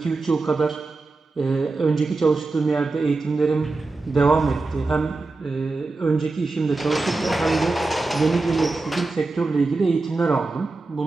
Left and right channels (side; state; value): left; quieter; 3.5 dB